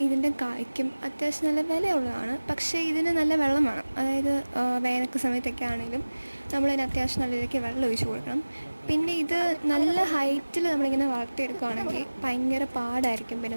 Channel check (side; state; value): both; inverted; correlation -1.00